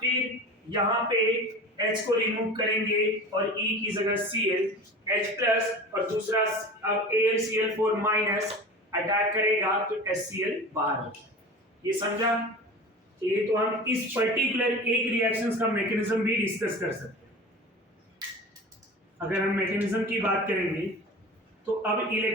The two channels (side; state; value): both; normal; correlation 0.35